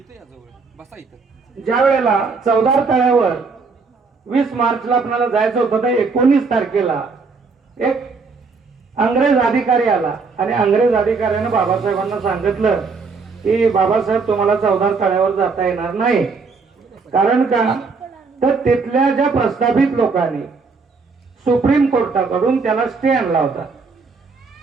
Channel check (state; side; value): quieter; left; 4.6 dB